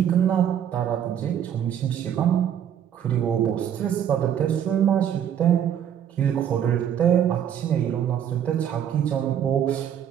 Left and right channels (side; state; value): left; quieter; 9.4 dB